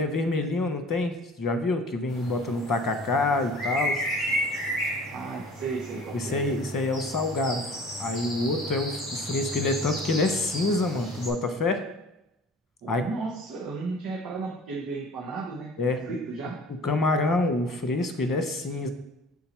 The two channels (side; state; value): both; normal; correlation 0.45